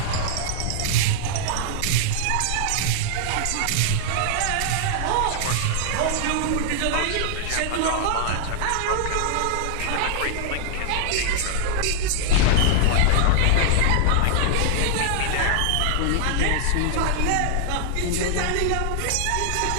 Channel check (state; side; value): different; both; correlation -0.01